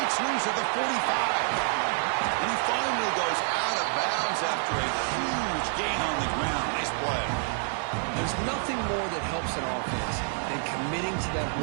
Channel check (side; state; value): left; silent; 59 dB below the other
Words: loose at the 45. And he finally goes out of bounds after a huge gain on the ground. Nice play. There's nothing more that helps an offense than committing to that